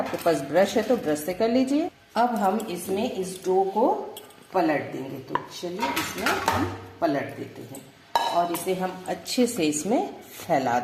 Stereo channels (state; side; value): identical; both; correlation 1.00